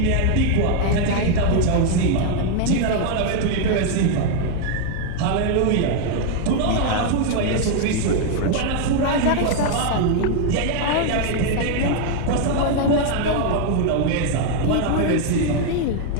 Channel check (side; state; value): both; different; correlation 0.00